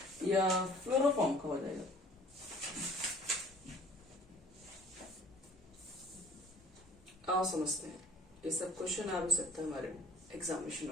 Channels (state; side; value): normal; both; correlation 0.50